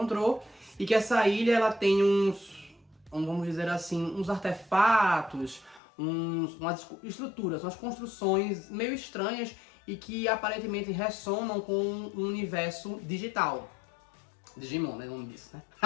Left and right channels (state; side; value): drops out; right; at 5.8 s